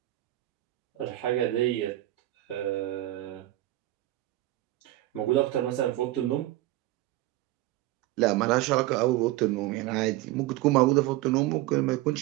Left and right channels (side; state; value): left; quieter; 16.6 dB